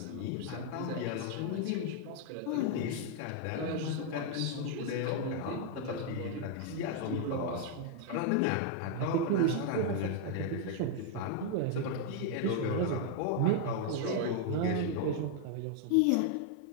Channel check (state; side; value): different; both; correlation 0.00